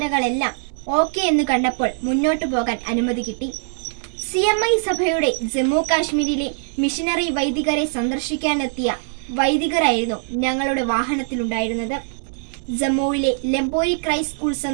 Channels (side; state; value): left; silent; digital silence